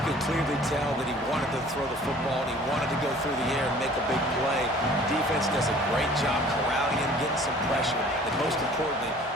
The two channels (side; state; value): both; normal; correlation 0.50